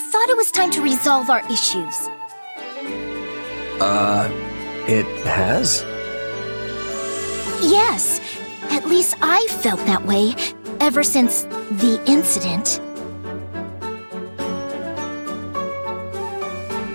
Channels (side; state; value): both; inverted; correlation -1.00